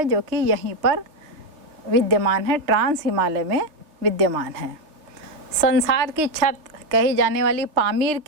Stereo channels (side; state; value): left; late; 3.2 ms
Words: जो कि यहीं पर विद्यमान है, ट्रांस हिमालय में विद्यमान है। संसार की छत कही जाने वाली पामीर